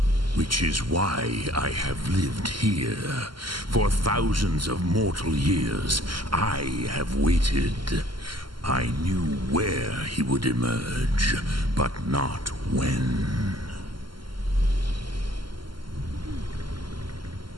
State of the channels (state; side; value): late; left; 0.72 ms